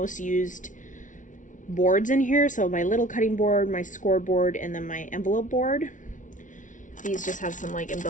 used boards in here. So my little cutting board, my scoreboard, and then my envelope board. These just have some like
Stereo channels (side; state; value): right; late; 0.37 ms